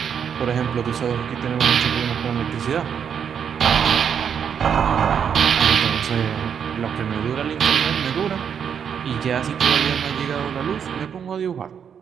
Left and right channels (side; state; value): left; quieter; 7.7 dB